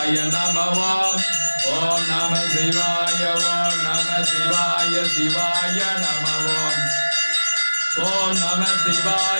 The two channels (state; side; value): inverted; both; correlation -1.00